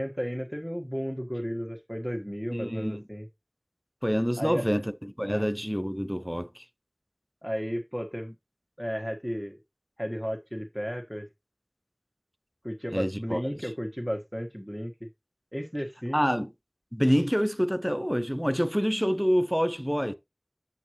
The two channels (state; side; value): identical; both; correlation 1.00